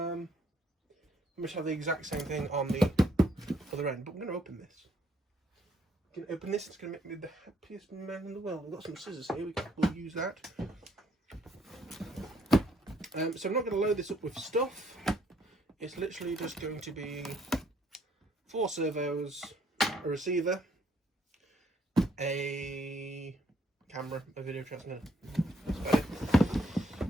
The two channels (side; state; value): both; normal; correlation 0.68